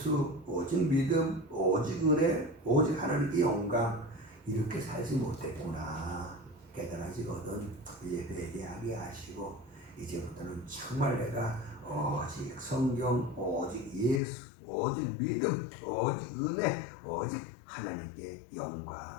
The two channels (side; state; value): right; drops out; at 14.2 s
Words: 오직 믿음, 오직 은혜, 오직 하나님께 영광, 이렇게 살지 못했구나 깨달아지거든. 이제 회개하게 하시고 이제부터는 정말 내가 오직 성경, 오직 예수, 오직 믿음, 오직 은혜, 오직 하나님께